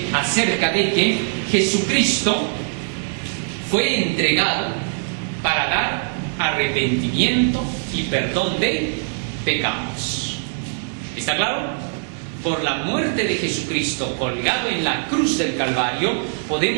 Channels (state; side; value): silent; left; digital silence